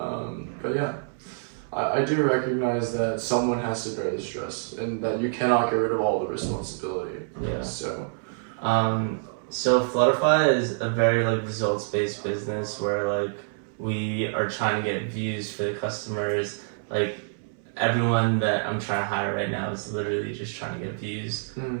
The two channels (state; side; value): silent; left; 60 dB below the other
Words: yeah, I do recognize that someone has to bear the stress, and that you cannot get rid of all the responsibility. Yeah. So. So Flutterfy is a very like results based business where like we are trying to get views for the customers. Like everyone that I'm trying to hire right now is literally just trying to get views